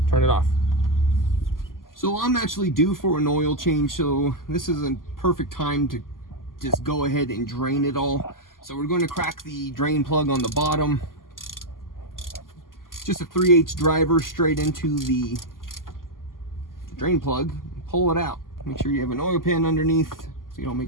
turn it off. So I'm actually due for an oil change, so this is a perfect time to just go ahead and drain it all. So we're going to crack the drain plug on the bottom. Just a 3/8 driver straight into the drain plug. Pull it out. Make sure you have an oil pan underneath so you don't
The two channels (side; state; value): right; late; 0.91 ms